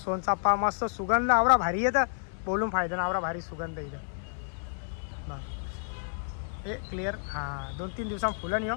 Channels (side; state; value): right; silent; 58 dB below the other